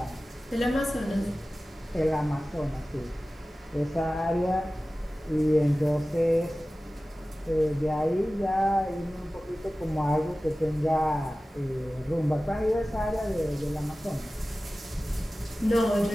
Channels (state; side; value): normal; both; correlation 0.96